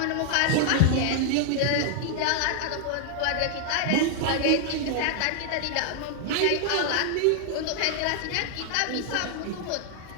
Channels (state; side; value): different; both; correlation 0.00